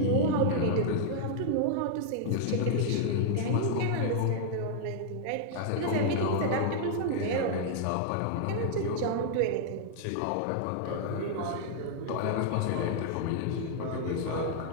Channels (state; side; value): different; both; correlation -0.01